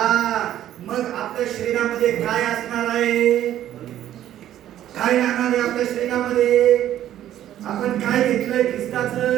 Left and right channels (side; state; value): left; quieter; 12.0 dB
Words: मग आपल्या शरीरामध्ये काय असणार आहे? काय राहणार आहे आपल्या शरीरामध्ये? आपण काय घेतलंय?